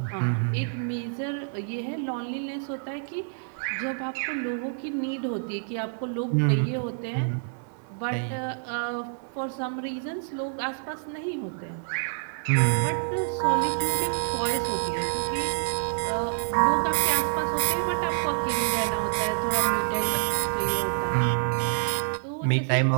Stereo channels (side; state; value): left; silent; digital silence